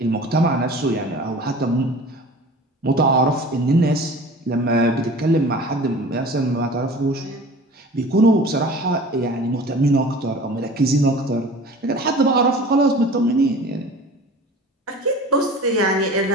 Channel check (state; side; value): normal; both; correlation 0.41